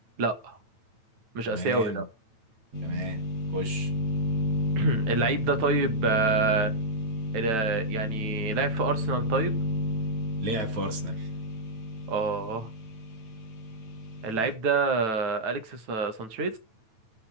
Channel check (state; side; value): late; left; 9.1 ms